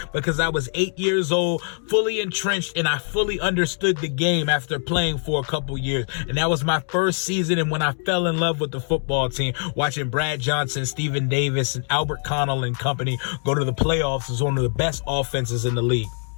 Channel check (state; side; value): silent; right; 57 dB below the other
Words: because I was 8 years old, fully entrenched, and I fully understood the game after playing for a couple years. And that was my first season, and when I fell in love with the football team, watching Brad Johnson, Stephen Davis, and Albert Connell and company go to the playoffs is one of the best offenses in the league.